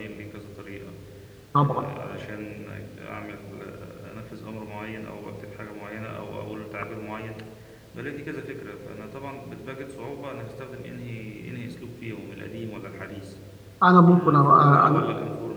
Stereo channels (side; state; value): both; identical; correlation 1.00